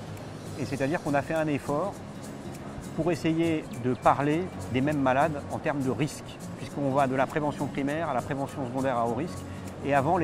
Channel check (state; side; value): identical; both; correlation 1.00